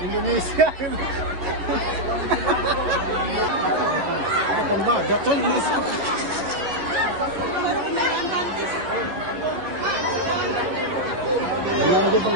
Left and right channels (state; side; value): late; left; 11 ms